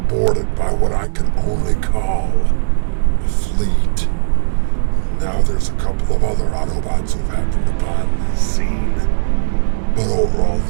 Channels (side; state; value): left; silent; digital silence